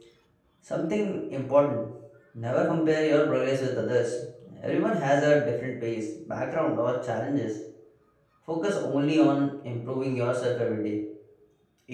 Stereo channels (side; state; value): both; identical; correlation 1.00